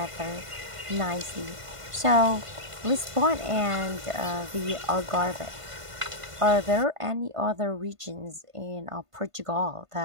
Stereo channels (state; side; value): late; left; 1.5 ms